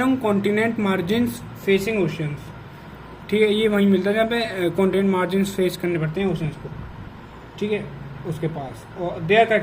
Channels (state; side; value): identical; both; correlation 1.00